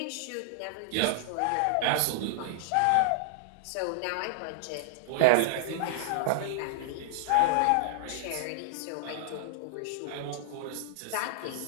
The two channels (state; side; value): different; both; correlation -0.01